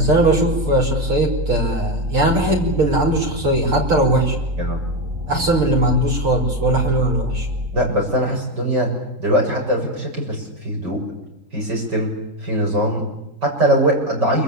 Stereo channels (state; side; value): late; left; 3.8 ms